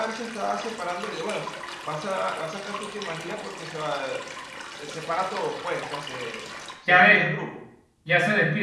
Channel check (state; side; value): identical; both; correlation 1.00